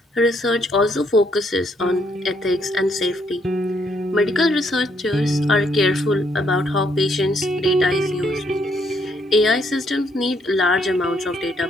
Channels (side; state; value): both; normal; correlation 0.72